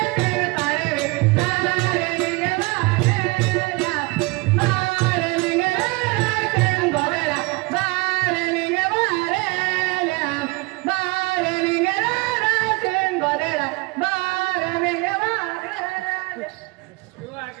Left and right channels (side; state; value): left; quieter; 25.3 dB